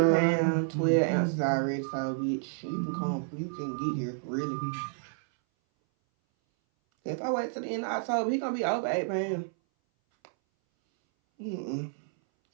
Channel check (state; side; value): silent; left; 58 dB below the other